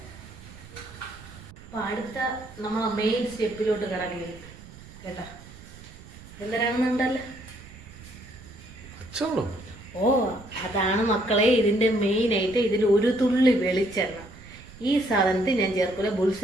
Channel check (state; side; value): noise; right; rumble, 18 dB below the sound